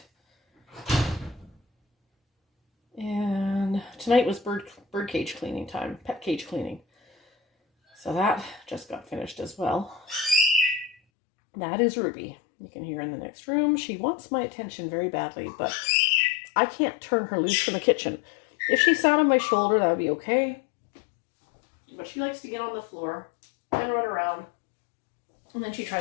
And tonight was bird cage cleaning time, pet cage cleaning. So that just got finished as well. That is Ruby. You can hear in the next room. She wants my attention very badly, but I can't turn her loose from the kitchen. If she sat on my shoulder, that would be okay. But she likes to get on the floor and run around. And then she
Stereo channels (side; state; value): right; drops out; at 11.0 s